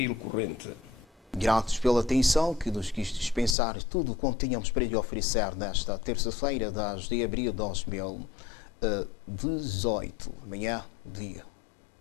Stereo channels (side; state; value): right; drops out; at 3.6 s